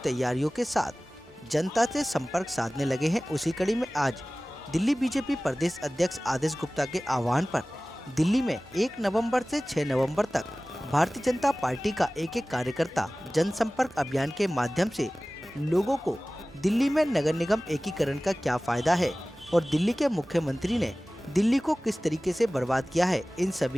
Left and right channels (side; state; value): both; normal; correlation 0.98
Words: तैयारियों के साथ जनता से संपर्क साधने लगे हैं। उसी कड़ी में आज दिल्ली बीजेपी प्रदेश अध्यक्ष आदेश गुप्ता के आह्वान पर दिल्ली में 1 नवंबर से 6 नवंबर तक भारतीय जनता पार्टी का एक कार्यकर्ता जनसंपर्क अभियान के माध्यम से लोगों को दिल्ली में नगर निगम एकीकरण का क्या फायदा है और दिल्ली के मुख्यमंत्री ने दिल्ली को किस तरीके से बर्बाद किया है, इन